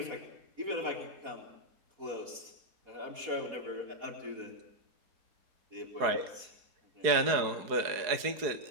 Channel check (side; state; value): left; late; 4.7 ms